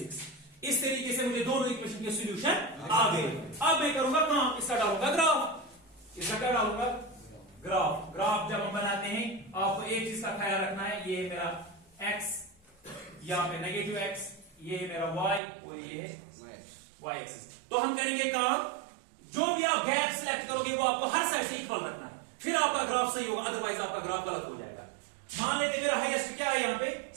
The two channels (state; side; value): drops out; left; at 15.4 s